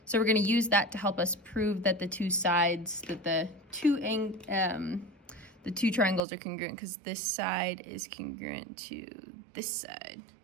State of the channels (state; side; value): drops out; left; at 6.2 s